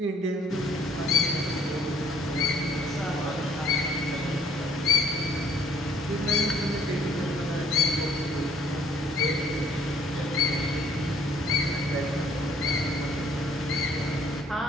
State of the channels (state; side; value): normal; both; correlation 0.60